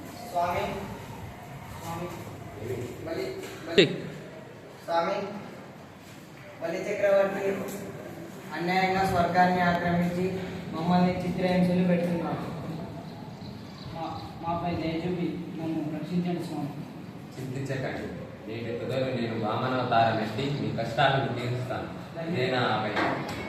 స్వామి, బలి చక్రవర్తి అన్యాయంగా స్వర్గాన్ని ఆక్రమించి మమ్మల్ని చిత్రహింసలు పెడుతున్నాడు. మాపై దయ చూపి నన్ను రక్షించండి స్వామి. చింతించకండి. నేటి తుదలు నేను వామనావతారం ఎత్తి మీ కష్టాలను తీరుస్తాను. నేనా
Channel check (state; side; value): identical; both; correlation 1.00